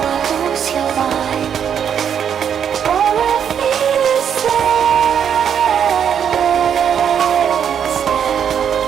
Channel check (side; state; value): left; quieter; 8.3 dB